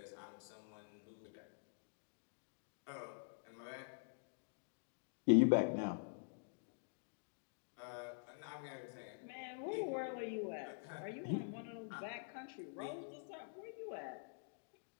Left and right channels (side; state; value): right; silent; digital silence